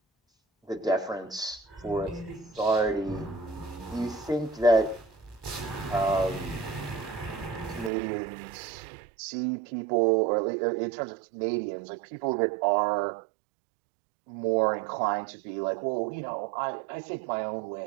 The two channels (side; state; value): left; drops out; at 7.9 s